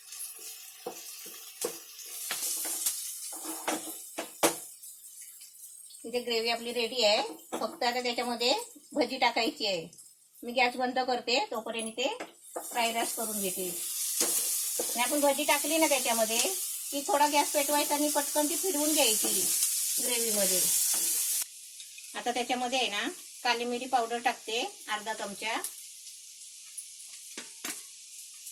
इथे ग्रेव्ही आपली रेडी आहे. फक्त आता त्याच्यामध्ये भजी टाकायची आहे. मी गॅस बंद करते, तोपर्यंत ते फ्राईड राईस करून घेते. आणि आपण भजी टाकली ना त्याच्यामध्ये की थोडा गॅस पेटवायचा आणि पटकन ती फिरवून घ्यायची ग्रेव्हीमध्ये. आता त्याच्यामध्ये आहे ना काली मिरी पावडर टाकते अर्धा चमचा.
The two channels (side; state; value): both; identical; correlation 1.00